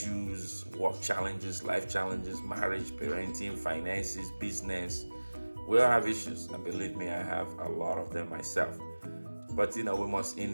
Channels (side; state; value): both; inverted; correlation -1.00